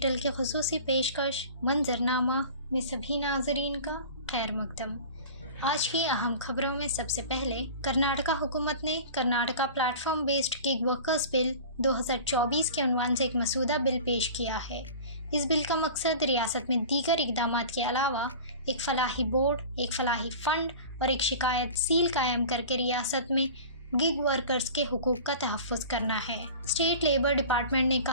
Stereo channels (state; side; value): inverted; both; correlation -0.38